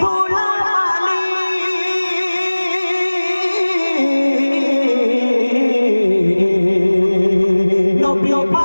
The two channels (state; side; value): inverted; both; correlation -1.00